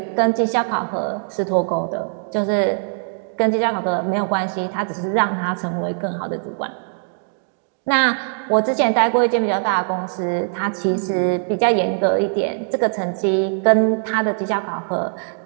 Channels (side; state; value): left; silent; digital silence